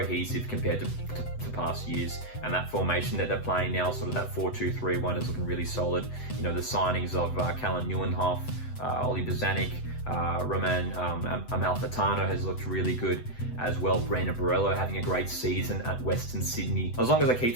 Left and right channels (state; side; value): late; right; 8.0 ms